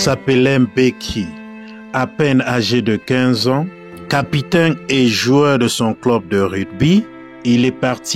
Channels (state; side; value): identical; both; correlation 1.00